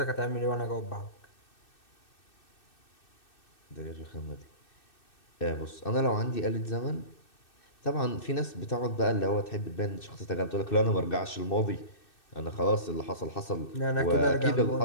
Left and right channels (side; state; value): right; late; 2.6 ms